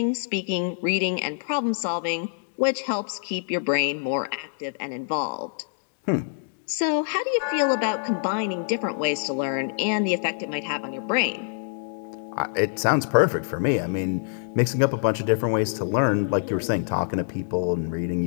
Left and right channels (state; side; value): silent; right; digital silence